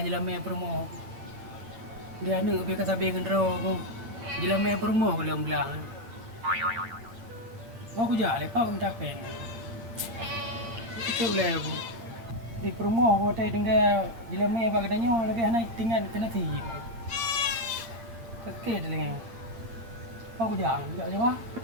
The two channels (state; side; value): late; left; 8.6 ms